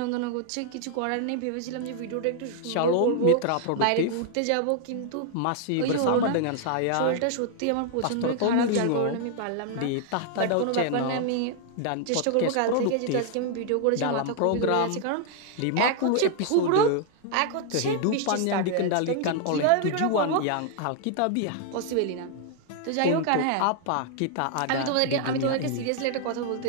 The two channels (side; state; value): both; different; correlation 0.00